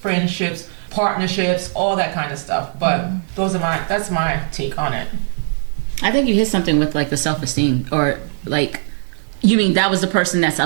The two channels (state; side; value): silent; left; 65 dB below the other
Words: partnerships, all that kind of stuff. But that's my take on it. I think you hit something with the self-esteem, or you mean that was the person that's